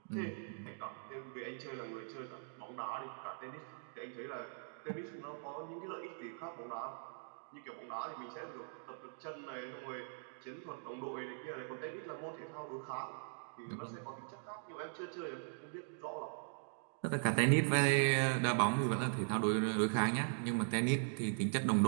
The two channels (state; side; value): silent; left; digital silence